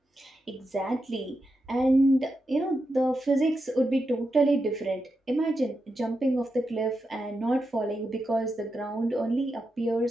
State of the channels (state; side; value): normal; both; correlation 0.87